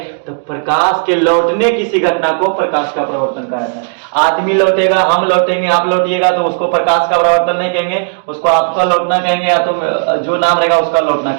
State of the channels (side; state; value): left; silent; digital silence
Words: तो प्रकाश के लौटने किसी घटना को प्रकाश का परावर्तन कहा जाता है। आदमी लौटेगा, हम लौटेंगे, आप लौटिएगा, तो उसको प्रकाश का परावर्तन नहीं कहेंगे, उसको आपका लौटना कहेंगे, या तो जो नाम रहेगा उसका लौटना